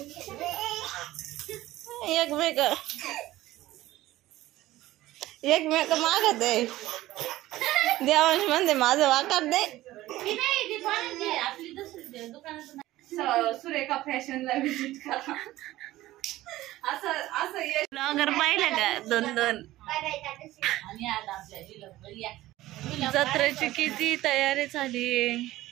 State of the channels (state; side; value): quieter; left; 16.2 dB